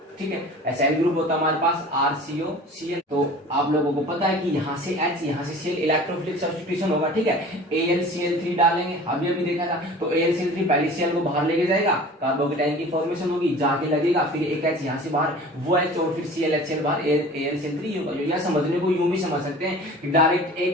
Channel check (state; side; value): normal; both; correlation 0.42